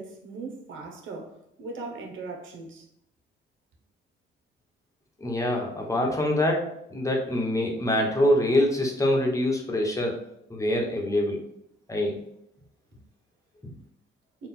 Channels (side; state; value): both; normal; correlation 0.67